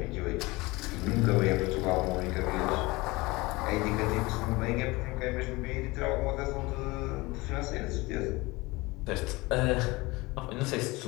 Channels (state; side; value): quieter; right; 22.6 dB